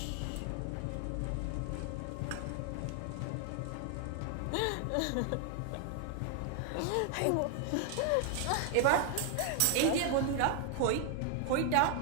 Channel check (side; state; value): both; different; correlation 0.00